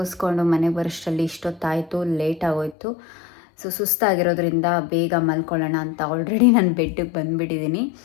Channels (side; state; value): right; drops out; at 2.8 s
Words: ಮನೆಗೆ ಬರೋಷ್ಟರಲ್ಲಿ ಇಷ್ಟೊತ್ತಾಯಿತು, ಲೇಟ್ ಆಗೋಯ್ತು. ಸೊ ಸುಸ್ತಾಗಿರೋದ್ರಿಂದ ಬೇಗ ಮಲ್ಕೊಳ್ಳೋಣ ಅಂತ ಆಲ್ರೆಡಿ ನಾನು ಬೆಡ್ಡಿಗೆ ಬಂದುಬಿಟ್ಟಿದ್ದೀನಿ.